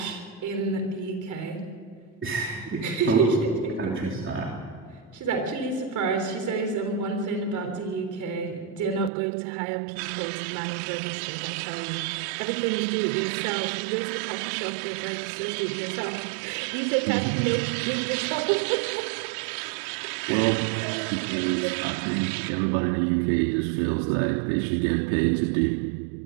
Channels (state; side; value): drops out; left; at 9.1 s